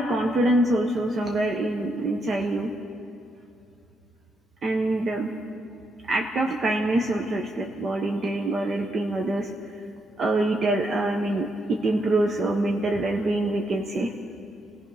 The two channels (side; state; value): both; normal; correlation 0.79